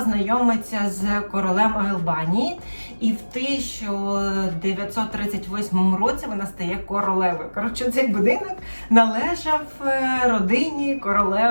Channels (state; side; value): inverted; both; correlation -1.00